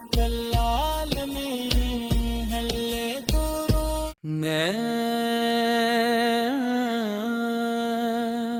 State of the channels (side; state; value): both; identical; correlation 1.00